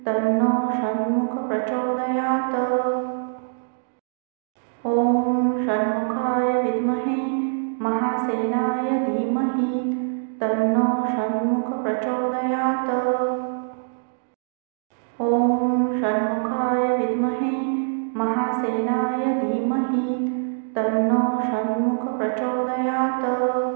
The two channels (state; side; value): silent; left; digital silence